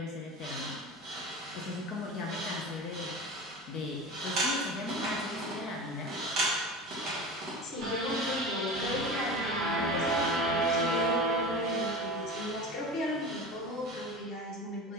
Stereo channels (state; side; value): normal; both; correlation 0.31